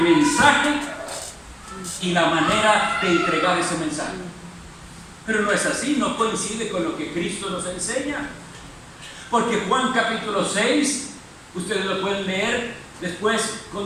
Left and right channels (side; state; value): both; identical; correlation 1.00